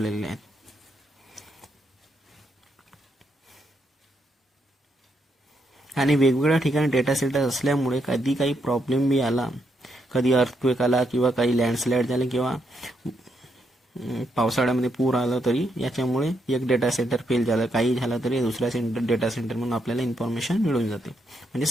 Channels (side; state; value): both; normal; correlation 0.78